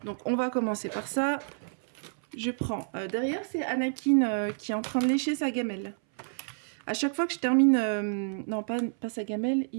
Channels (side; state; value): left; silent; 58 dB below the other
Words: Donc on va commencer par ça. Je prends, derrière c'est Anakin qui est en train de lécher sa gamelle. À chaque fois que je termine, non pas sa gamelle,